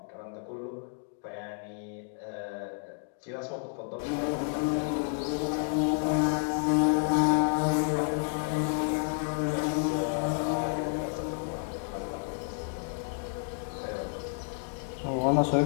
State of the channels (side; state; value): right; silent; 57 dB below the other